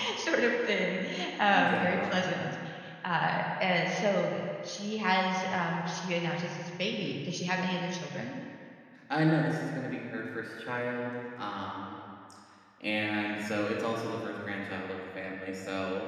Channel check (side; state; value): both; identical; correlation 1.00